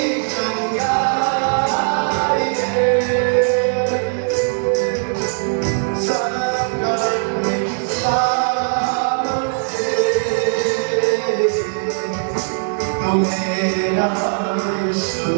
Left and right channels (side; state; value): left; silent; digital silence